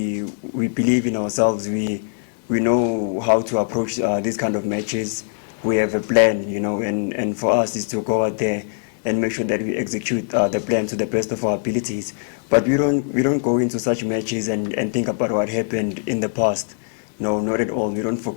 believe in ourselves. We know how to approach these kind of matches. We have a plan, you know, and for us is to go out there and make sure that we execute the plan to the best of our abilities. But we don't go into such matches and think about what happened in the past. No, not at all. We don't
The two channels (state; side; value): silent; right; digital silence